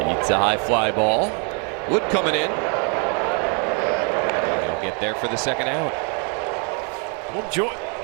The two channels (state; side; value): quieter; left; 38.3 dB